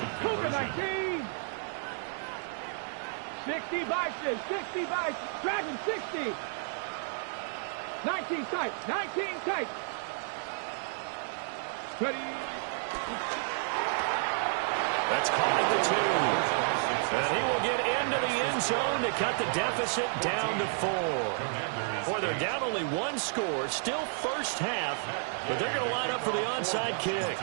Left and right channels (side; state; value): left; silent; digital silence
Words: Cougar 19. 60 by 6, 60 by 6. Dragon 60. 19 tight, 19 tight. Ready. That's caught at the 2. And he will get into the end zone to cut the deficit down to 4. Boy, they're down only 1 score, still first half, but they're going to line up for the onside kick.